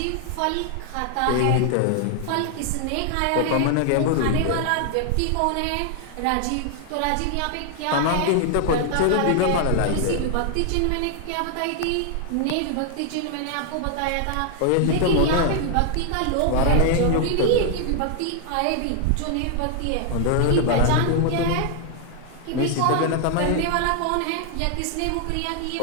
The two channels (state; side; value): different; both; correlation 0.00